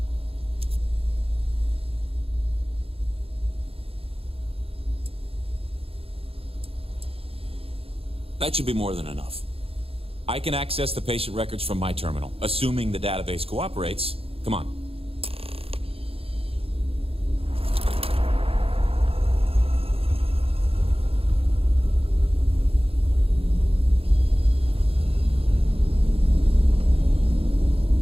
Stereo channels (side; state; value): left; late; 0.28 ms